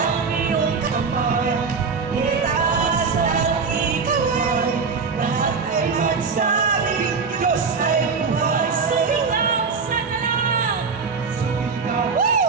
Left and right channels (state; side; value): quieter; left; 5.1 dB